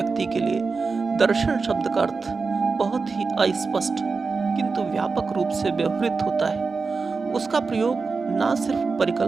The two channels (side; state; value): left; quieter; 4.5 dB